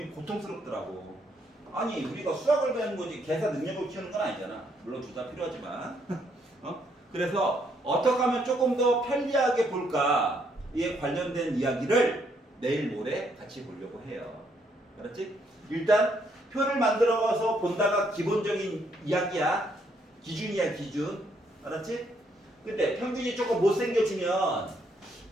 고통스럽더라고. 아니 우리가 수학을 배우는 거지 계산 능력을 키우는 건 아니잖아. 물론 둘 다 필요하지만 그래서 어떻게 하면 조금 더 편리하게 볼까 이에 관련된 이야기를 내일 모레 같이 보려고 해요. 알았지? 일단 표를 만들어서 본다가 기본적인 이야기야. 기준이야 기준. 알았지? 근데 평균이 조금 못생겨지면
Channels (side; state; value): both; normal; correlation 0.72